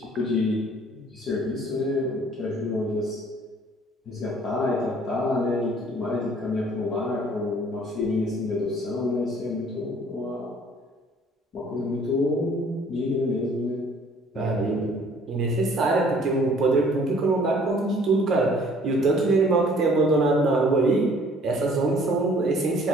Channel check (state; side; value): normal; both; correlation 0.56